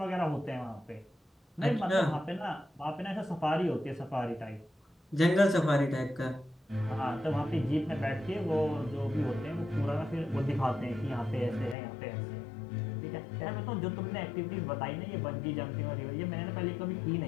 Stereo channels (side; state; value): right; drops out; at 11.8 s